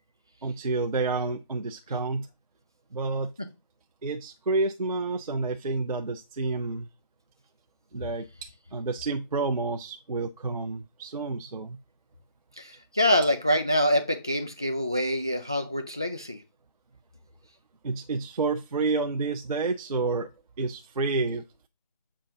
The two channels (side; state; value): both; inverted; correlation -0.53